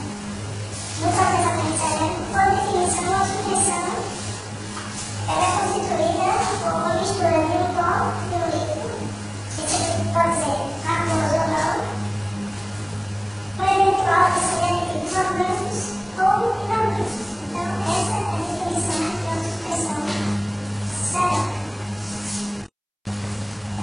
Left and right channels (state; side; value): identical; both; correlation 1.00